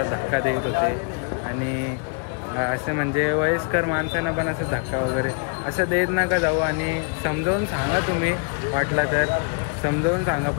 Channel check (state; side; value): quieter; right; 36.6 dB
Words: धक्का देत होते. आणि असं म्हणजे वयस्कर माणसांना पण असं धक्का वगैरे असं देत नका जाऊ. आणि समजावून सांगा तुम्ही वाटला तर समजावून सांगा.